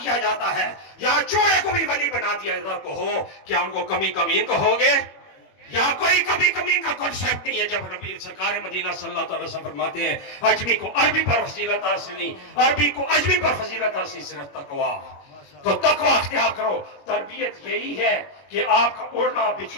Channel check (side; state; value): right; late; 21 ms